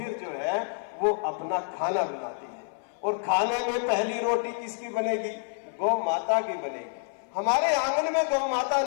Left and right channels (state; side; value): silent; right; 55 dB below the other